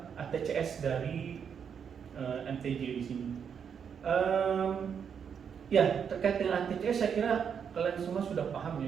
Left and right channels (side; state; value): left; quieter; 7.3 dB